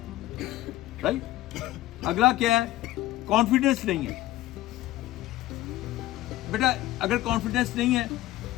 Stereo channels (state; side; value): quieter; right; 15.8 dB